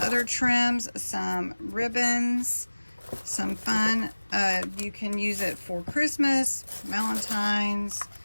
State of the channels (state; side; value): inverted; both; correlation -1.00